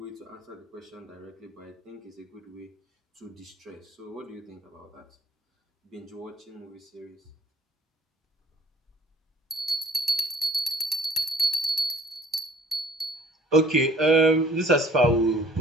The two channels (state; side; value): normal; both; correlation 0.53